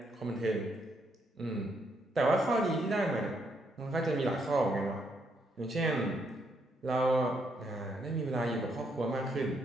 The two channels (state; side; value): normal; both; correlation 0.75